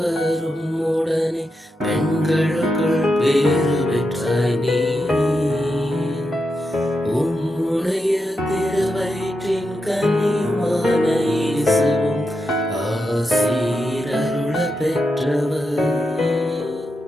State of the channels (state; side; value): normal; both; correlation 0.86